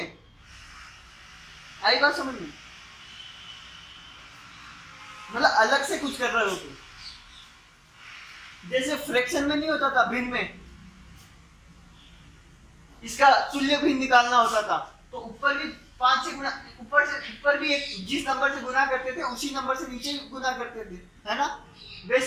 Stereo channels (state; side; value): identical; both; correlation 1.00